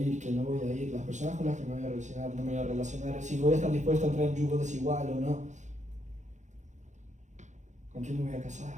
que no voy a ir, las personas con las que me voy a relacionar, no me voy a relacionar, si voy a estar dispuesto a entrar en yugo desigual o no, con quién me voy a casar,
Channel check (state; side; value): late; left; 0.35 ms